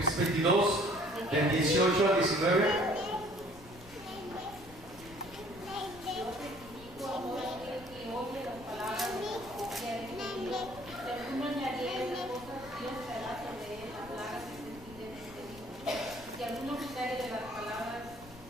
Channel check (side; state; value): left; noise; rumble, 19 dB below the sound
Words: 22, del 18 al 19.